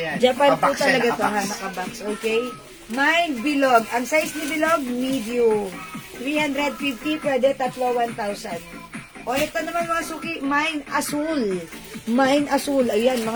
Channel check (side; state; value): both; identical; correlation 1.00